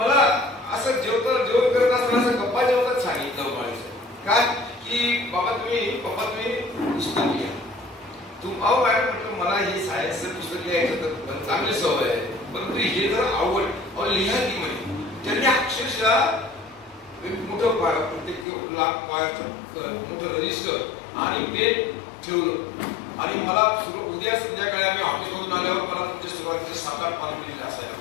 असं जेवण करत असताना असं गप्पा जेवतात सांगितलं म्हणायचं काय की पप्पा तुम्ही पुस्तक लिहा. अहो मॅडम म्हटलं मला हे सायन्सचं पुस्तक लिहायचं तर चांगली सवय आहे, परंतु हे जर आवड लिहा की म्हणे. त्यांनी अक्षरशः मोठं प्रत्येक लाख मोठं रजिस्टर आणि पेन ठेवलं, आणि मला उद्या संध्याकाळी आम्ही ऑफिसमधून आल्यावर मला तुमच्या सुरुवातीचे 7-8 पानं लिहिलेले असायला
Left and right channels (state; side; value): drops out; right; at 18.4 s